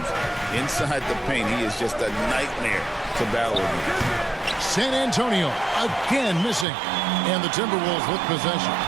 Inside the paint, he is just a nightmare to battle with. San Antonio again missing, and the Timberwolves with possession.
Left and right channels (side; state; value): left; drops out; at 6.7 s